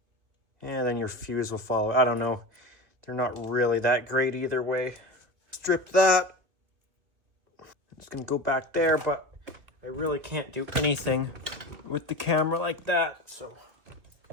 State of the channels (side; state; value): left; late; 2.5 ms